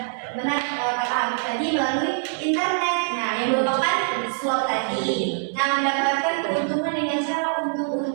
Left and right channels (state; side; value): silent; left; 63 dB below the other